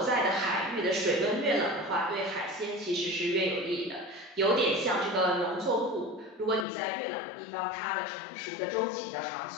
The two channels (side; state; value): right; drops out; at 6.7 s